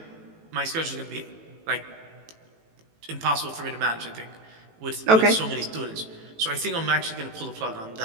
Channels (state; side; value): late; left; 18 ms